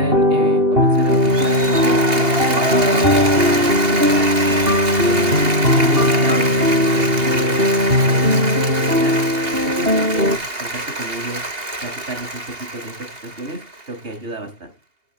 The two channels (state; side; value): late; left; 2.8 ms